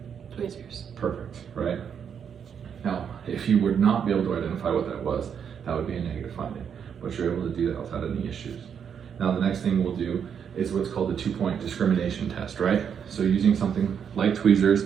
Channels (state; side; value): quieter; left; 7.6 dB